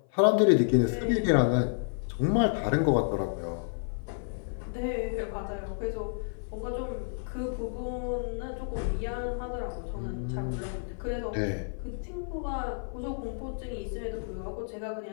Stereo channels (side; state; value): right; silent; 55 dB below the other